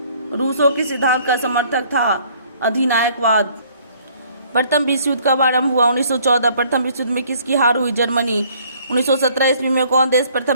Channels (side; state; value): both; inverted; correlation -0.59